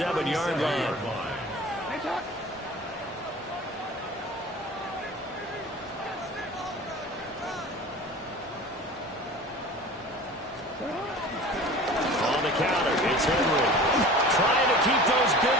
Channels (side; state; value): both; normal; correlation 0.40